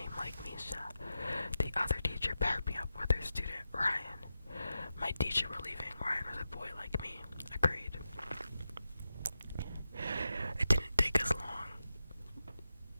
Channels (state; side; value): inverted; both; correlation -0.90